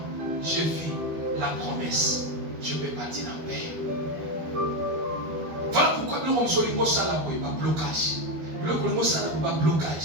je vis la promesse. Je peux partir en paix. Voilà pourquoi nous sommes sur le mot salabo et pas blocage. Le mot salabo pas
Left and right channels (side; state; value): left; late; 12 ms